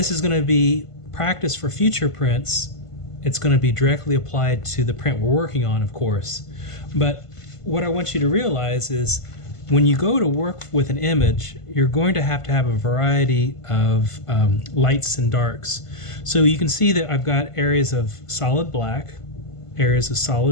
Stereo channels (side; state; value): right; late; 1.5 ms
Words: is going to be practice for future prints. It's going to be directly applied to the print we're working on, of course. But what I want you to realize is when you go to work with an image, you're going to have a variety of lights and darks. So you can see that I've got areas of solid black, areas of